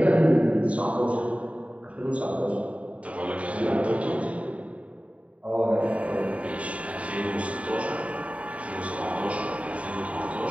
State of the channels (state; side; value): late; left; 0.065 ms